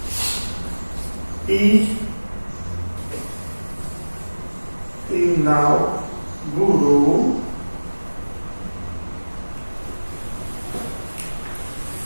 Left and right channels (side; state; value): both; inverted; correlation -1.00